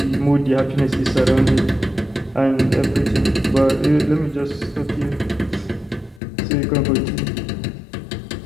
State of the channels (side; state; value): right; drops out; at 6.2 s